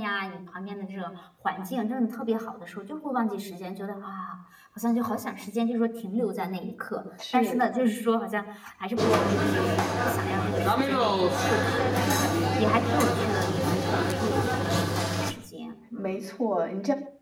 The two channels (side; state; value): both; identical; correlation 1.00